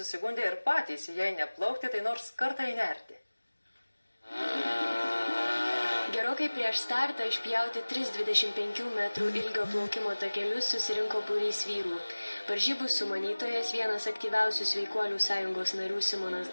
ir patys, jei neplaukti, tai nors kartą įnerti. Gerokai prieš startą išpjauti 3,25 metrų ilgio plaukimo takelius susirinko būrys vyrų. Varžybų sumanytojas, vienas aktyviausių Sveikuolių sąjungos narių Simonas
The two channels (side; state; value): both; inverted; correlation -1.00